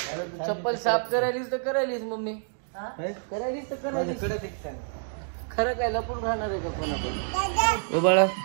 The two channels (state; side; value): silent; left; digital silence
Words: चप्पल साफ करायलीस तर करायलीस मम्मी, करायलीस तर करायलीस. खरं काय लपून राहणार आहे का पण आपण? बाळा